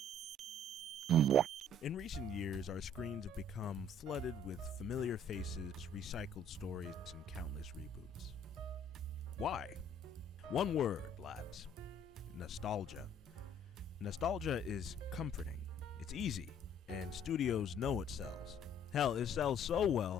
In recent years, our screens have become flooded with familiar faces, recycled stories, and countless reboots. Why? One word, lads. Nostalgia. Nostalgia is comforting. It's easy, and studios know it sells. Hell, it sells so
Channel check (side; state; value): both; normal; correlation 0.58